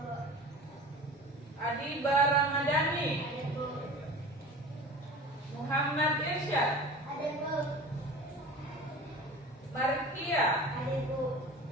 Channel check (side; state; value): both; normal; correlation 0.37